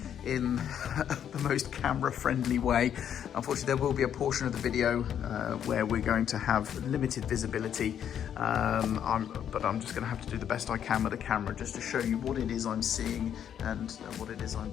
in the most camera-friendly way. Unfortunately, there will be a portion of the video where we're going to have limited visibility, but I'm just going to have to do the best I can with the camera just to show you what it is I'm seeing and what it is I'm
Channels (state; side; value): quieter; right; 9.2 dB